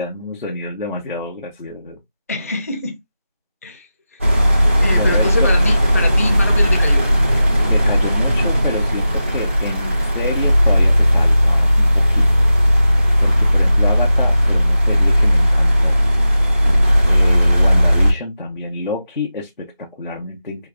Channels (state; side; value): inverted; both; correlation -0.93